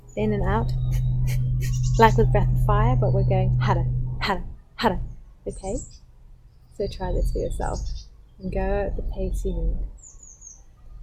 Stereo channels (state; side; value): identical; both; correlation 1.00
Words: in and out like with breath of fire, but we're going hada, hada, hada. Okay? So try this for yourself and go at the pace you need.